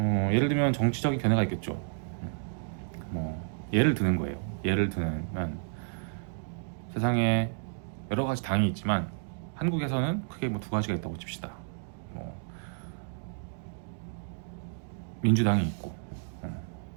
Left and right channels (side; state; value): left; silent; digital silence